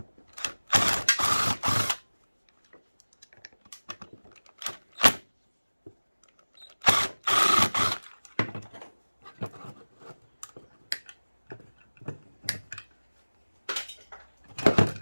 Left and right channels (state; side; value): inverted; both; correlation -1.00